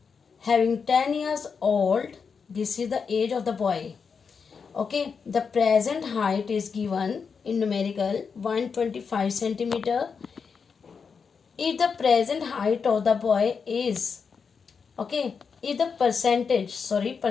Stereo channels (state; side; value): quieter; right; 5.8 dB